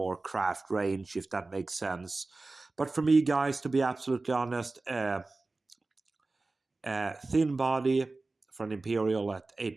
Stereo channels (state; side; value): quieter; left; 3.4 dB